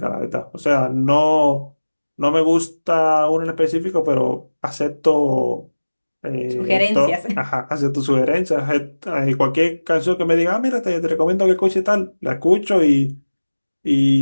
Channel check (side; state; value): both; inverted; correlation -1.00